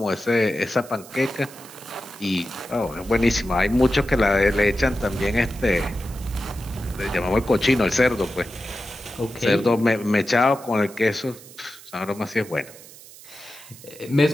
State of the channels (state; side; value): noise; right; hiss, 19 dB below the sound